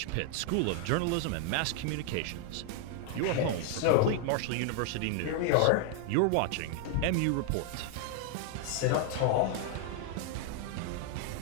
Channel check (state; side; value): different; both; correlation 0.00